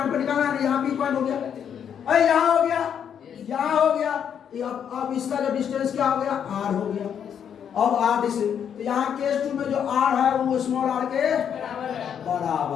पर निकालना है, यहाँ पी पॉइंट हो गया, अरे यहाँ हो गया, यहाँ हो गया। अब इसका जो डिस्टेंस क्या हो गया? आर हो गया। अब आर डिस्टेंस, तो यहाँ केस 2 में जो आर है वो स्मॉल आर के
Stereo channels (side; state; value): right; quieter; 8.3 dB